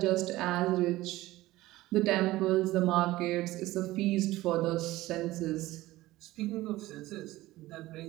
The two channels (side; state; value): left; quieter; 17.6 dB